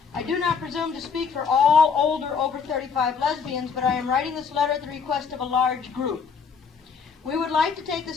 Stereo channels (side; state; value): right; quieter; 5.8 dB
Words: I do not presume to speak for all older, over 35 lesbians, but I am writing this letter at the request of a large group. We would like to take